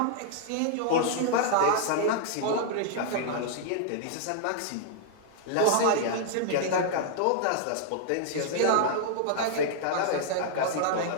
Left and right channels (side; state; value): both; different; correlation -0.01